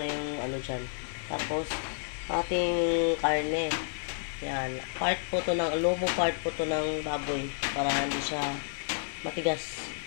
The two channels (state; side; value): silent; right; 57 dB below the other